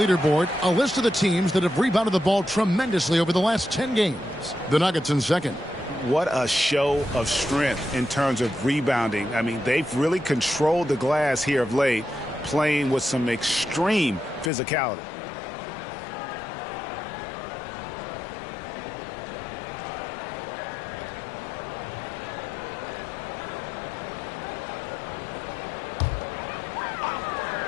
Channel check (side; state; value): right; drops out; at 14.5 s